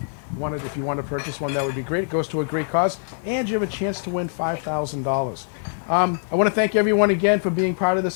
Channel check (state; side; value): silent; right; digital silence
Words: if you want to purchase one, that would be great. It goes to a great cause, and you have a chance to win $5,000. I want to thank everyone again for being part of